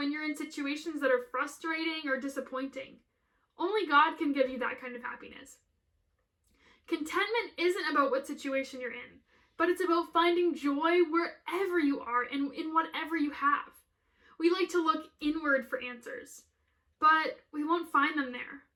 you're in situations that are frustrating or disappointing. Only God can give you that kind of happiness. Contentment isn't about what situation you're in, but it's about finding joy wherever you are and in whatever you have. We like to look inward for answers, but we won't find them there.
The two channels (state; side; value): identical; both; correlation 1.00